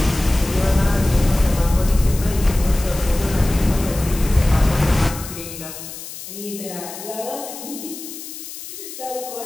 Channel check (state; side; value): noise; left; hiss, 12 dB below the sound